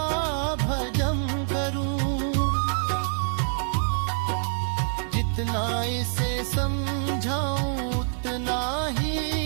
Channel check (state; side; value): silent; left; digital silence